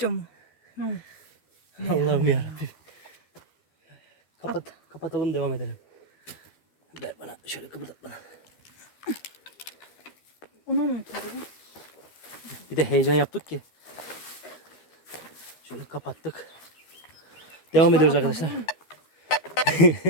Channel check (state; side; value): late; right; 12 ms